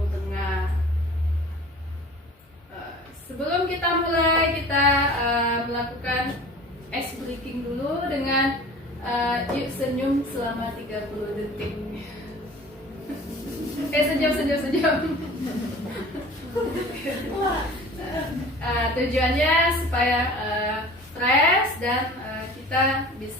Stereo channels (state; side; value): normal; both; correlation 0.43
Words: Tengah. Sebelum kita mulai, kita melakukan ice breaking dulu dengan yuk senyum selama 30 detik. Senyum. Tujuannya supaya fresh dan kita